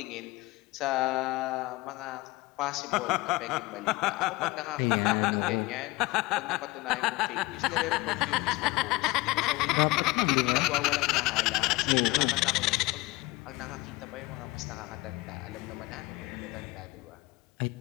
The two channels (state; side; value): quieter; right; 21.5 dB